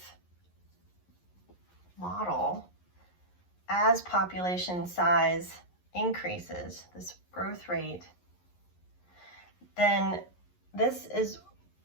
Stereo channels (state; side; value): late; right; 11 ms